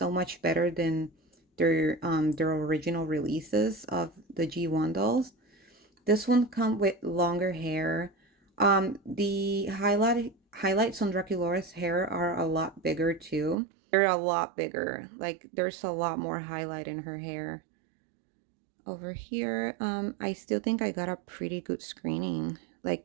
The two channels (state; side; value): drops out; left; at 13.6 s